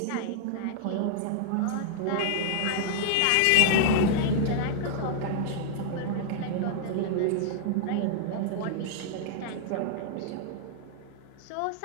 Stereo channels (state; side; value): different; both; correlation -0.01